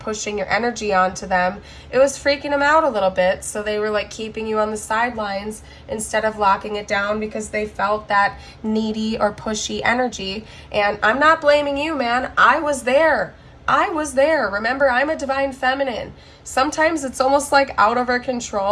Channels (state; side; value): identical; both; correlation 1.00